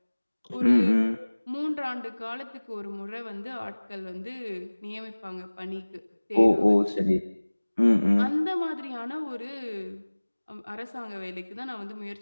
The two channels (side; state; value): both; inverted; correlation -1.00